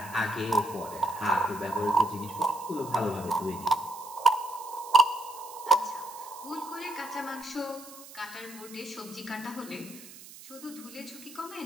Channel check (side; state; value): right; noise; hiss, 17 dB below the sound